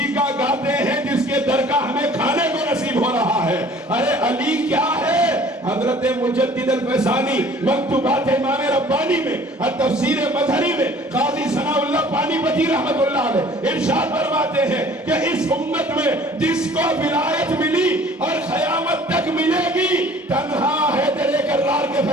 کا گاتے ہیں جس کے در کا ہمیں کھانے کو نصیب ہو رہا ہے۔ ارے علی کیا ہے؟ حضرت مجدد الفیضانی مکتوبات امام ربانی میں اور تفسیر مظہری میں قاضی ثناء اللہ پانی پتی رحمت اللہ علیہ ارشاد فرماتے ہیں کہ اس امت میں جس کو ولایت ملی اور قیامت تک ملے گی تنہا حیدر کرار کے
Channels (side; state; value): both; normal; correlation 0.51